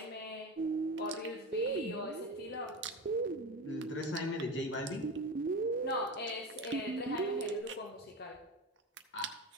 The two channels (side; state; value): both; normal; correlation 0.24